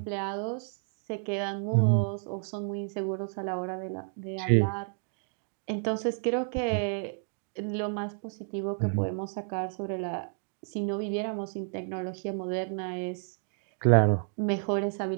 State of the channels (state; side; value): silent; left; 57 dB below the other